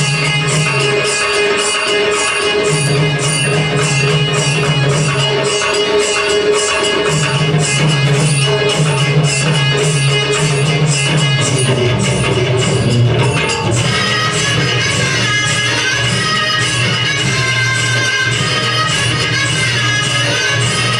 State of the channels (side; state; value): both; identical; correlation 1.00